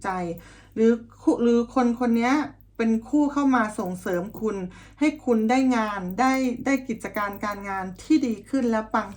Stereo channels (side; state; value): both; identical; correlation 1.00